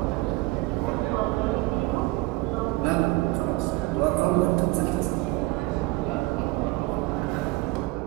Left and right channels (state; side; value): quieter; left; 21.5 dB